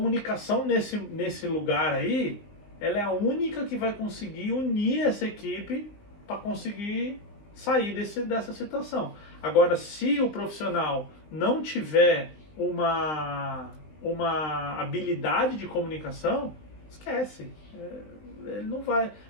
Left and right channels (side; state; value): right; late; 20 ms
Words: nesse lugar aí ela é a única que vai conseguir unir essa equipe para conseguir sair dessa situação. Agora, se o profissional não tiver uma habilidade de comunicação, esquece. Ele não vai.